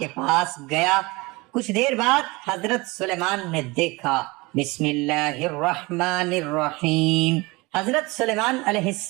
پاس گیا۔ کچھ دیر بعد حضرت سلیمان نے دیکھا، بسم اللہ الرحمن الرحیم۔ حضرت سلیمان علیہ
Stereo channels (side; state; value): left; quieter; 24.0 dB